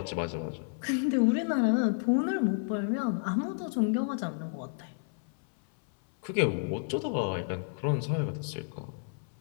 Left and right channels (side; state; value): right; silent; 57 dB below the other